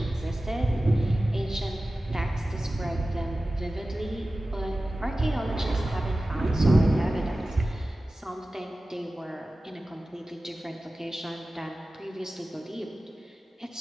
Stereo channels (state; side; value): normal; both; correlation 0.96